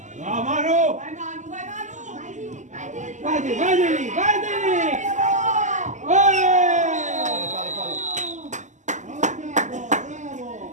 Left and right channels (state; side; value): late; left; 0.35 ms